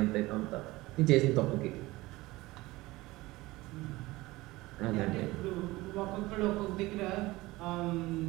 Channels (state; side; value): quieter; left; 19.9 dB